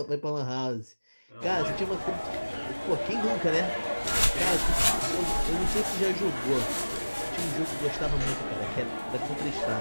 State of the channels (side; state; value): both; inverted; correlation -1.00